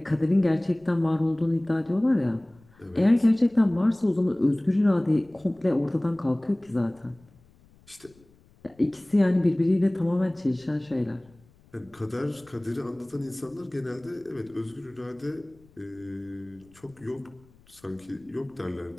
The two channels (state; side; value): noise; left; rumble, 29 dB below the sound